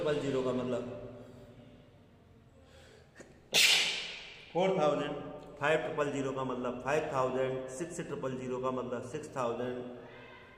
का मतलब 4,000, 5,000 का मतलब 5,000, 6,000 का मतलब 6,000,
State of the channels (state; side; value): identical; both; correlation 1.00